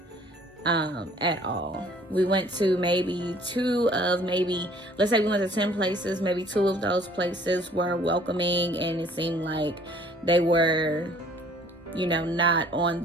at all. We went to maybe let's say we went to 10 places, maybe 2 of those places were welcoming, and it seemed like they were, not on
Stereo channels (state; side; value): normal; both; correlation 0.56